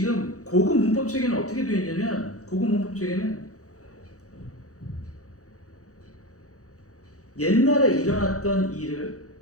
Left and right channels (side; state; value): right; late; 0.66 ms